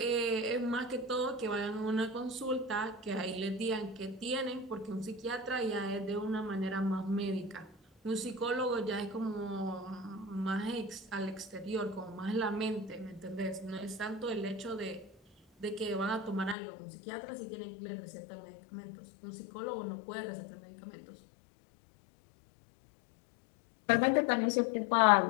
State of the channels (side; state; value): right; drops out; at 16.6 s